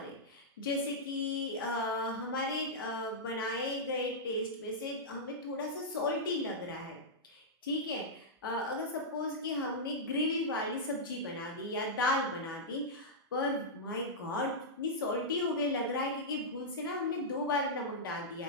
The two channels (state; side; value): normal; both; correlation -0.10